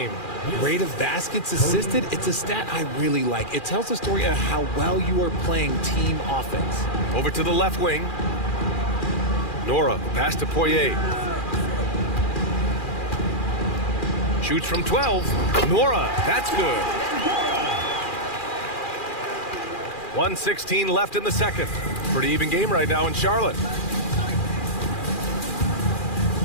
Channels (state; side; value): late; right; 2.4 ms